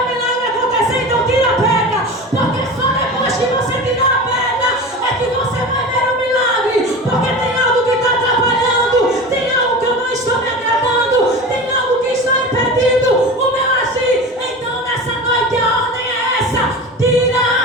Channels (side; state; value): both; normal; correlation 0.31